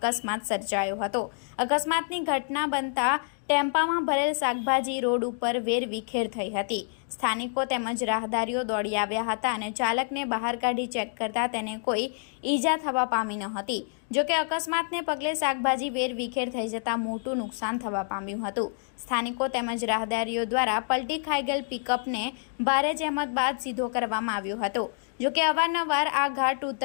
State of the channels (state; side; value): silent; right; 60 dB below the other